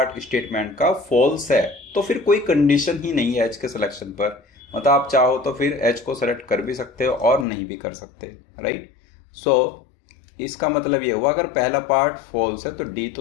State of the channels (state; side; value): drops out; right; at 7.5 s